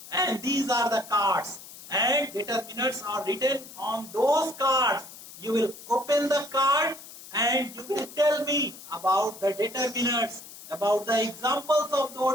and these are the cards and determinants are written on those cards. You will open the card and you will tell me about the determinants, about the examples of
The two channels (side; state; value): left; noise; hiss, 16 dB below the sound